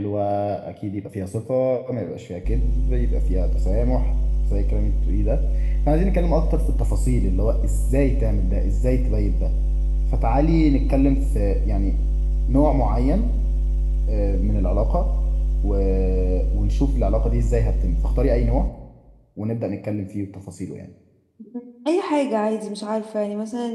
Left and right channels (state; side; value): identical; both; correlation 1.00